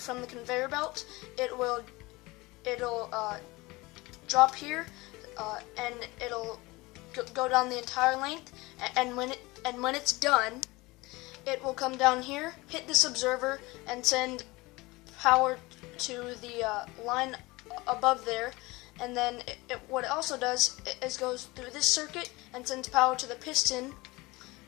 the conveyor belt, it'll drop here, and it'll go down the entire length. And when it's done, it will come down here, hit this observer, and send power to the line above there. And then what it also does is goes through this circuit and sends power to the piston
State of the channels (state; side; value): quieter; right; 22.2 dB